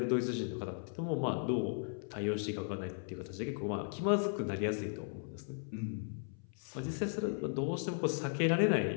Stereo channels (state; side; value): silent; right; 53 dB below the other